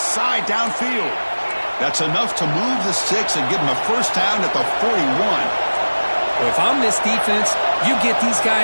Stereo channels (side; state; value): both; inverted; correlation -1.00